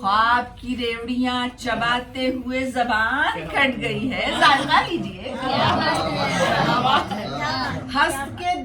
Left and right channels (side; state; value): both; identical; correlation 1.00